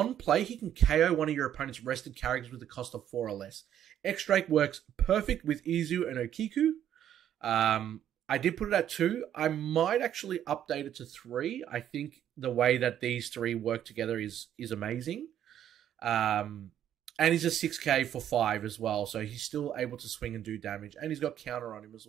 play, he can KO one of your opponent's rested characters with a cost of 4 or less. X-Drake works perfect with Izu and Okiku. I did put it at 2. I might actually update it to 3. I think the way that these 3 work together is amazing. And he's a 6k for 5 as well, so he's still able to swing and do damage. And he's got counter on him as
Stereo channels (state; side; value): quieter; left; 10.5 dB